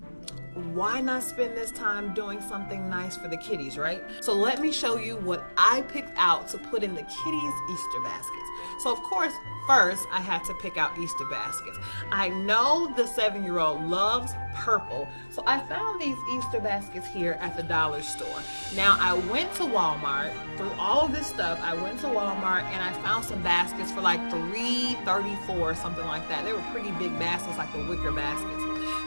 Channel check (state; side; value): inverted; both; correlation -1.00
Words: why not spend this time doing something nice for the kitties, right? So let me show you what I picked out to put in the kitties' Easter baskets. So of course, first I had to pick out Easter baskets. I know the 7-year-old loves purple, so I found these Easter baskets here at the dollar store. Now I went to Walmart, through all of this stuff, I went to Walmart and I found some baskets for like $3.34 or something like that. They were pretty big baskets, like the wicker baskets.